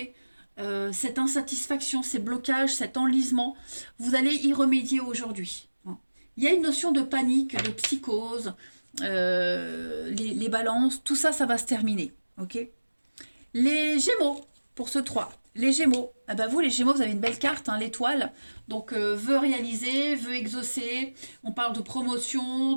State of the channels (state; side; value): inverted; both; correlation -1.00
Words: cette insatisfaction, ces blocages, cet enlisement, vous allez y remédier aujourd'hui. Il y a une notion de panique, de psychose, les balances, tout ça, ça va se terminer. Ok. Les Gémeaux, pour ce 3. Les Gémeaux, ah ben vous les Gémeaux, vous avez une belle carte, hein, l'étoile. Donc veut réaliser, veut exaucer. On parle de promotion,